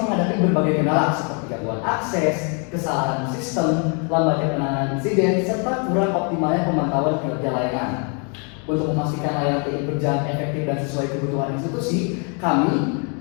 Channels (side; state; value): right; quieter; 37.7 dB